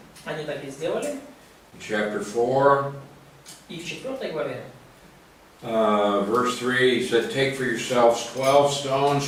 Они так и сделали. In chapter 4, И в 4 главе, verse 3, he said, "Take for yourselves 12 stones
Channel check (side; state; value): both; identical; correlation 1.00